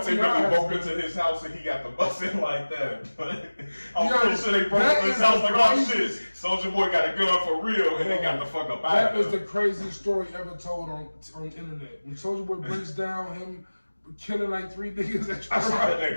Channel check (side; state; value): both; inverted; correlation -1.00